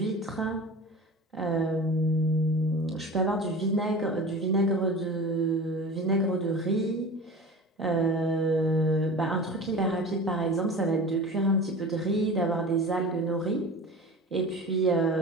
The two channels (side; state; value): both; normal; correlation 0.35